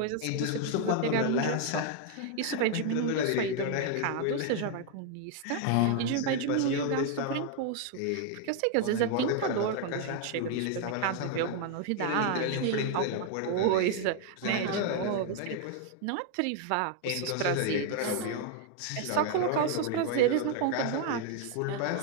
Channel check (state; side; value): different; both; correlation 0.00